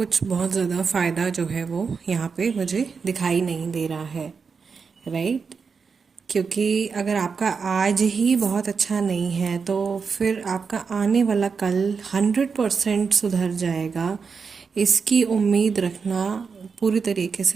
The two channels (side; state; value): left; quieter; 5.4 dB